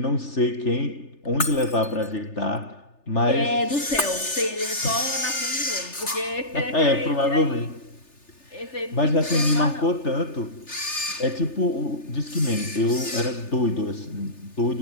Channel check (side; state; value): right; late; 3.4 ms